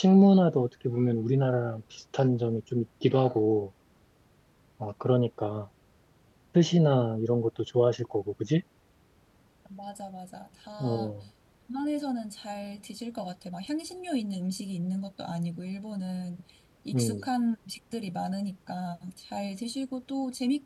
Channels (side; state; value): both; identical; correlation 1.00